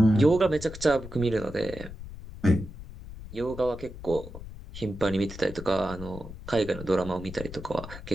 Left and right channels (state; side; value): noise; left; rumble, 13 dB below the sound